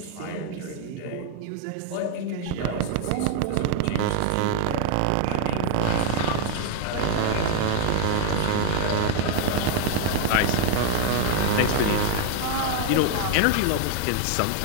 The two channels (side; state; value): both; different; correlation 0.00